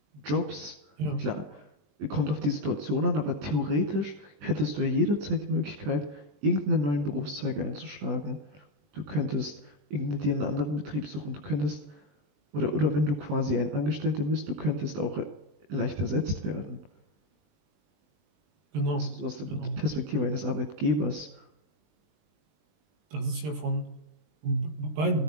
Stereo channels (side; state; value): left; late; 20 ms